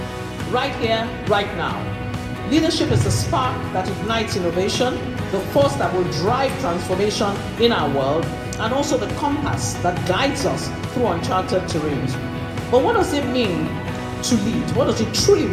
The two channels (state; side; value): identical; both; correlation 1.00